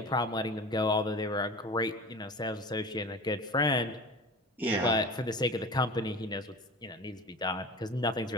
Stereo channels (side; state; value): both; normal; correlation 0.35